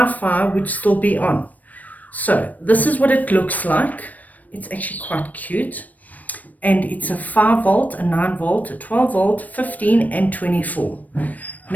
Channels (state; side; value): late; right; 0.076 ms